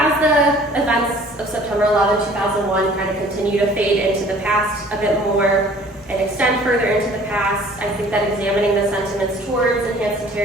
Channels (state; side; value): normal; both; correlation 0.52